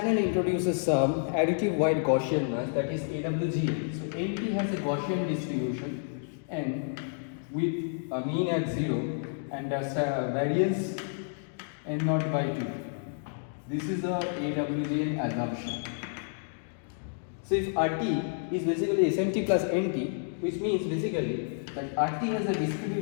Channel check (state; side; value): silent; right; digital silence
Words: introduces some additive wide Gaussian noise, that is AWGN. So NT has a Gaussian distribution N with a mean at 0 and a variance N0 by 2. This is the AWGN assumption. So if RT is basically SMT plus NT, which means basically that RT has a